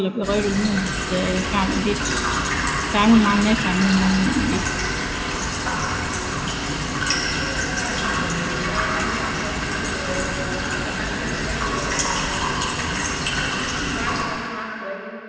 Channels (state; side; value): identical; both; correlation 1.00